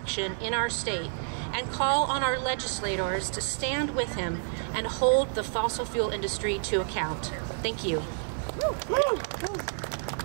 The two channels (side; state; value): left; silent; digital silence